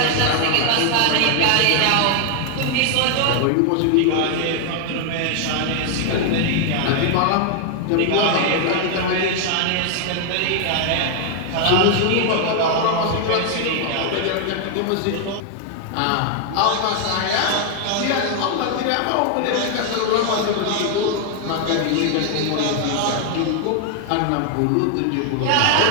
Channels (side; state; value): both; different; correlation 0.00